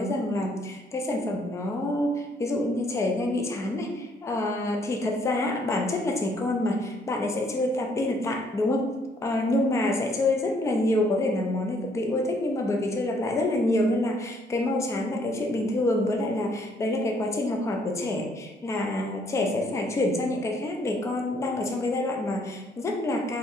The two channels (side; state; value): both; normal; correlation 0.66